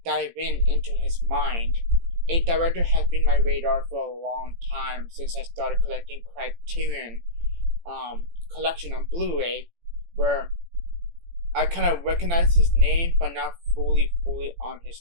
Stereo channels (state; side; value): late; left; 18 ms